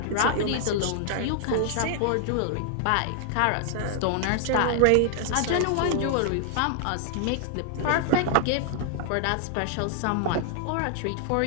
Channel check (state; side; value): different; both; correlation 0.00